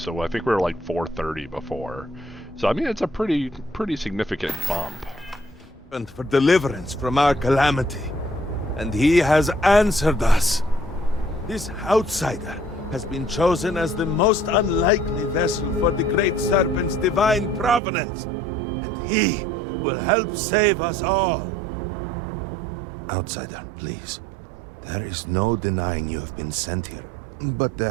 I think we were like 430 before. So, I mean, it's a pretty significant bump. For deliverance from our calamity. And he has answered us. This outsider has been chosen as the most unlikely vessel for the Great Serpent's divine providence. And he will help save us all. Outsider, please. There is no denying you have been sent here. But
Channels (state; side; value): drops out; left; at 17.8 s